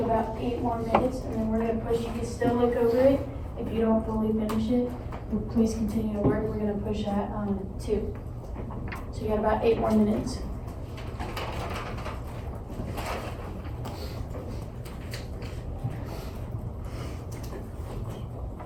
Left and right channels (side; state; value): both; identical; correlation 1.00